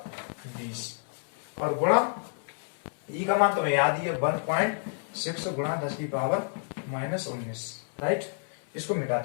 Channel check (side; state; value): right; silent; 58 dB below the other